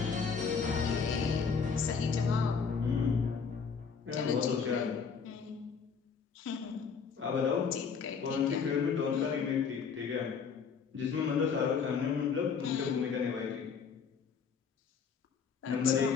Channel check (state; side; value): quieter; right; 6.0 dB